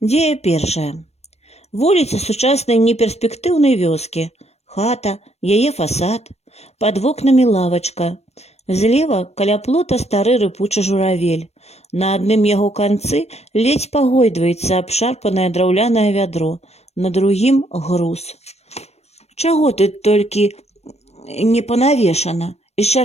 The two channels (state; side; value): late; right; 0.31 ms